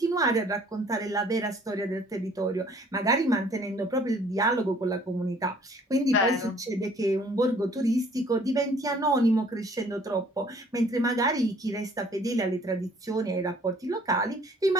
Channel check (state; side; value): normal; both; correlation 0.57